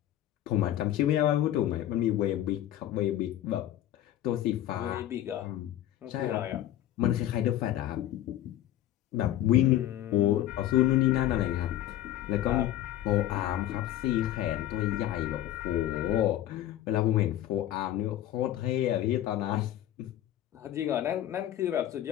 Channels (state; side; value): quieter; right; 12.9 dB